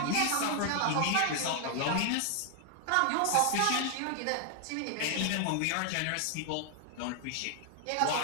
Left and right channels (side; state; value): both; different; correlation 0.00